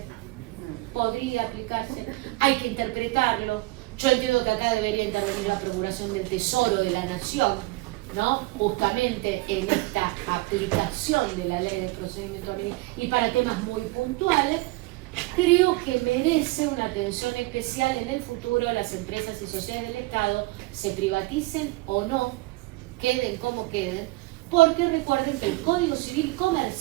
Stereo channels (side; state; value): left; quieter; 21.6 dB